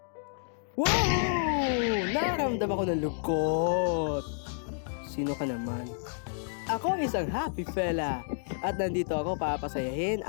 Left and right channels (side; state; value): right; silent; digital silence